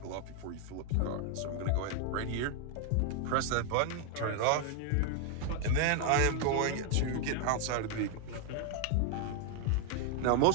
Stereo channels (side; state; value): both; different; correlation 0.00